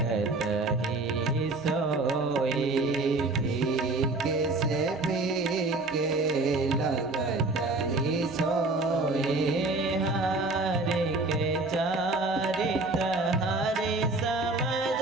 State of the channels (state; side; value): quieter; left; 3.1 dB